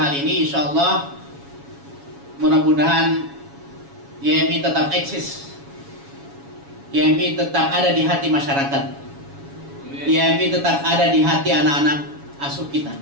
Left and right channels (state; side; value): late; left; 7.2 ms